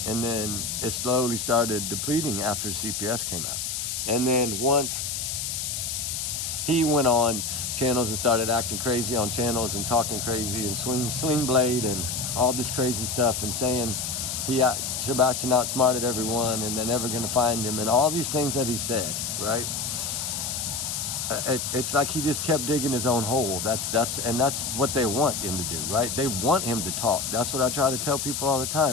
and then it slowly started depleting after CPS came out. And then once he went on channels and started acting crazy on channels and talking crazy and sling blade and all this crazy stuff, and saying Sebastian outsmarted everyone and they're never going to find him, and all these things that he said, right? It's like he just kept digging his own hole. That's what they want him to do, right? They want him to talk. That's what I try to tell people all the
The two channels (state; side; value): noise; left; hiss, 3 dB below the sound